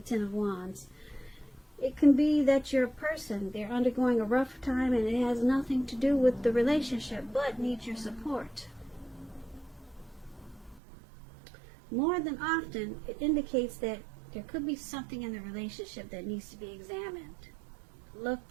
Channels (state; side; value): drops out; left; at 10.8 s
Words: Ten of Wands. It can be that your person, they're undergoing a rough time and it has nothing to do with the relationship, but needs your support. More than often, it indicates that there could be something in the relationship that needs to be examined,